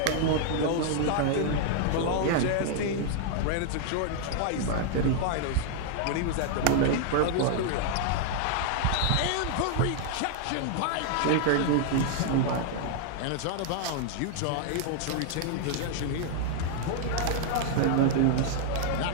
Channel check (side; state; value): both; different; correlation 0.00